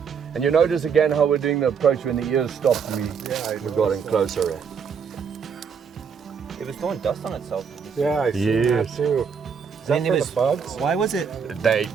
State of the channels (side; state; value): left; quieter; 6.5 dB